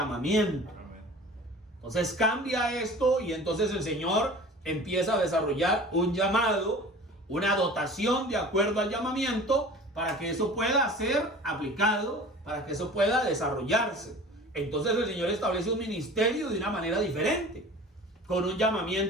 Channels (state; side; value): normal; both; correlation 0.41